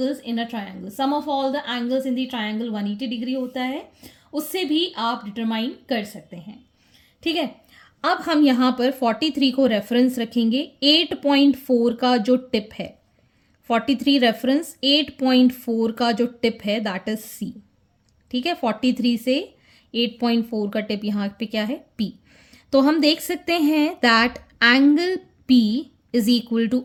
in a triangle. Sum of all the angles in the triangle 180 degree होता है, उससे भी आप डिटरमाइन कर सकते हैं। ठीक है, अब हम यहाँ पर 43 को रेफरेंस रखेंगे, 8.4 का जो टिप है 43 रेफरेंस 8.4 का जो टिप है दैट इज C। ठीक है, 43 से 8.4 का टिप यहाँ पे क्या है P। तो हम देख सकते हैं that angle P is equal to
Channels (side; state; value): both; identical; correlation 1.00